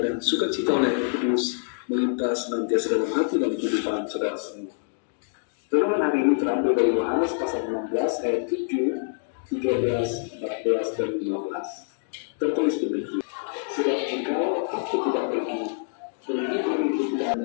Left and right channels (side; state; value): right; silent; digital silence